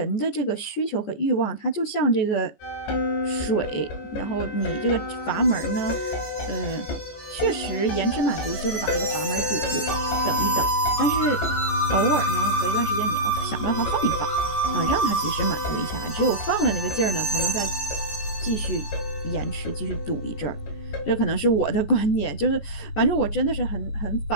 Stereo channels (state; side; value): late; right; 14 ms